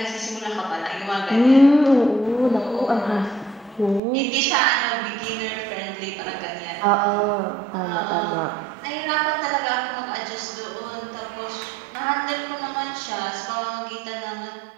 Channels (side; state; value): left; drops out; at 4.0 s